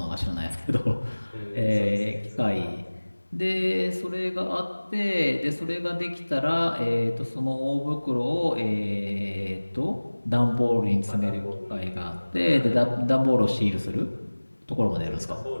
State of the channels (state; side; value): inverted; both; correlation -1.00